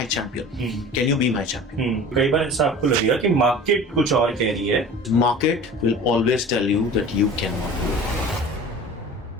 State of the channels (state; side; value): normal; both; correlation 0.39